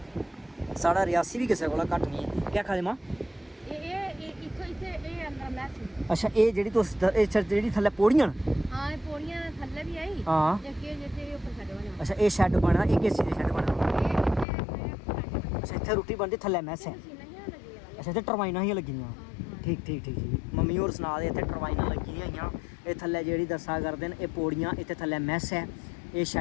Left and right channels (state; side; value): drops out; right; at 14.5 s